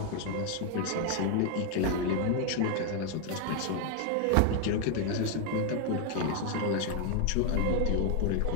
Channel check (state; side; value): different; both; correlation 0.01